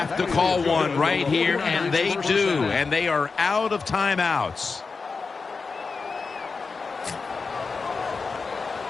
to call one right here, and they do. And they are out of timeouts.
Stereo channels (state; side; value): quieter; right; 4.6 dB